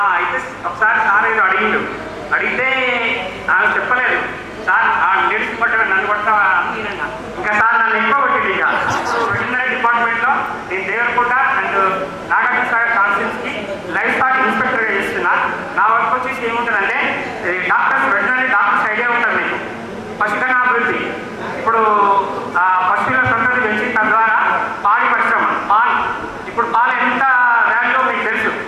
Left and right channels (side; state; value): both; identical; correlation 1.00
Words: అయితే ఒకసారి సార్ ఏదో అడిగితే నాకు చెప్పలేదు. సార్ లేడీస్ పట్టగా నన్ను కొడతావా అన్నీనన్నా. ఇంకా సార్ నన్ను ఎక్కువ కొట్టింది. ఇక వెటర్నరీ డిపార్ట్మెంట్లో నేను దేవరకోట అండ్ నాగార్జున సాగర్ కాన్స్టిట్యూన్సీకి లైఫ్ స్టాక్ ఇన్స్పెక్టర్గా చేస్తున్నా. నా వర్క్ వచ్చేసి ఏముంటుందంటే డాక్టర్స్, వెటర్నరీ డాక్టర్స్ ఐడియా ఉంటుంది మీకు, పశుధన అభివృద్ధి. ఇప్పుడు పశువుల సంతతి పెంచి తద్వారా పాడి పరిశ్రమ, పాలు. ఇప్పుడు పాలు ఎంత వాల్యూ మీకు తెలుసు.